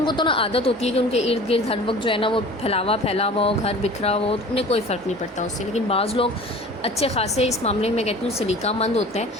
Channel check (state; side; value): normal; both; correlation 0.42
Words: کو تو نا عادت ہوتی ہے کہ ان کے ارد گرد ہر وقت جو ہے نا وہ پھیلا ہوا ہو، گھر بکھرا ہو، انہیں کوئی فرق نہیں پڑتا اس سے، لیکن بعض لوگ اچھے خاصے اس معاملے میں کہتی ہوں سلیقہ مند ہوتے